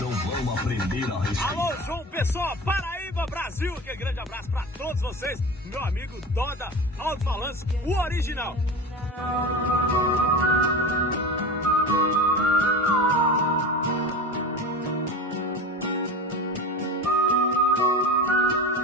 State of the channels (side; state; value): both; normal; correlation 0.29